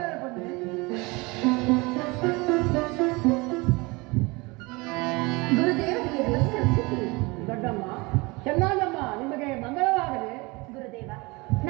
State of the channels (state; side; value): quieter; left; 25.2 dB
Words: ಬನ್ನಿ. ದೊಡ್ಡಮ್ಮ ಚೆನ್ನಮ್ಮ ನಿಮಗೆ ಮಂಗಳವಾಗಲಿ. ಗುರುದೇವ,